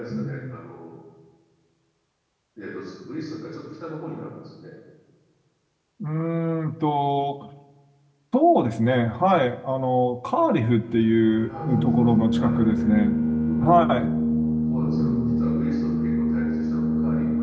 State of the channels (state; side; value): identical; both; correlation 1.00